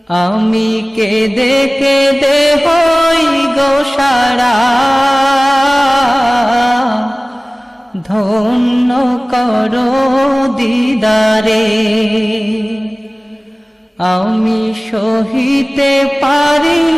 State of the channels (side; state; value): both; normal; correlation 0.98